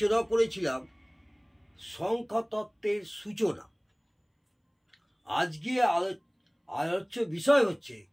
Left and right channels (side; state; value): both; identical; correlation 1.00